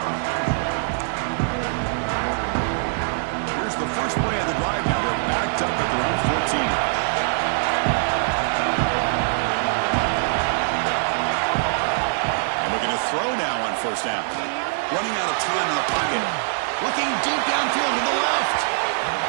Here's the first play of the drive now. They're backed up at their own 14. And looking to throw now on 1st down. Running out of time in the pocket. Looking deep downfield to the left.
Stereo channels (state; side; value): silent; left; digital silence